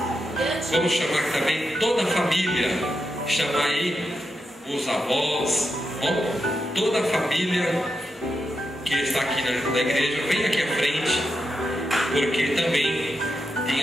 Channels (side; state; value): both; normal; correlation 0.86